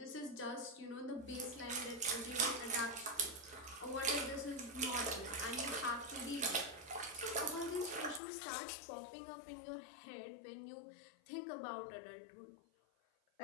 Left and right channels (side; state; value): right; drops out; at 8.2 s